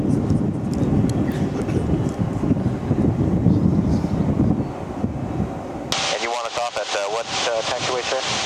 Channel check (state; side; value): identical; both; correlation 1.00